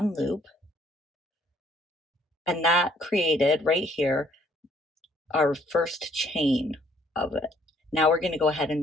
loop, and that created right here our first chain of it. Now we're going to go ahead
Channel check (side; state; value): both; normal; correlation 0.63